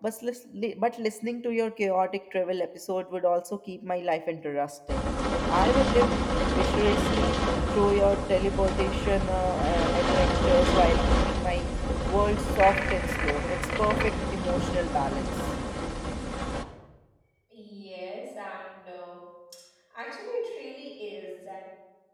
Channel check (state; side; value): identical; both; correlation 1.00